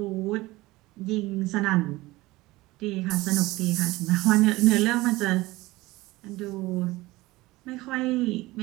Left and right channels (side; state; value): left; quieter; 19.7 dB